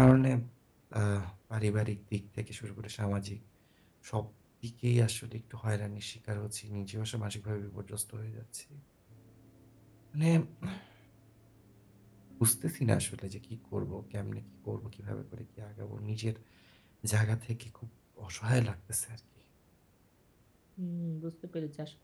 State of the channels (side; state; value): both; identical; correlation 1.00